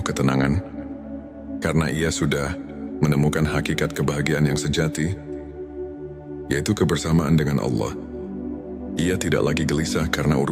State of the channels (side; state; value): both; identical; correlation 1.00